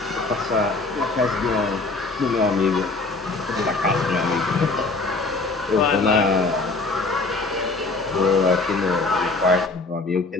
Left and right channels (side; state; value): right; quieter; 3.5 dB